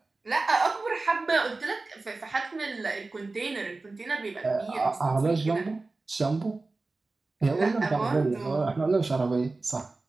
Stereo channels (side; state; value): left; quieter; 3.5 dB